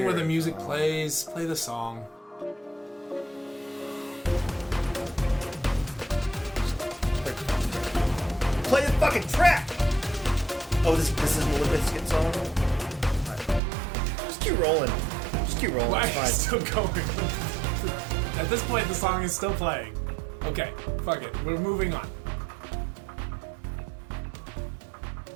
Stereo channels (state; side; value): drops out; left; at 13.6 s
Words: where the music plays. Play the song. Play the fucking track! Oh, this is a Limp Bizkit song? Just keep rolling. Why It's are you fine. still going? At this point, the song is still playing. Okay, fuck it. We're moving on.